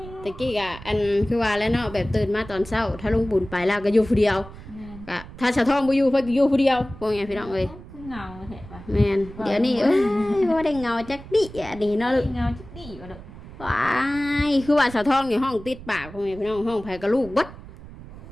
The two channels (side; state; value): right; noise; rumble, 16 dB below the sound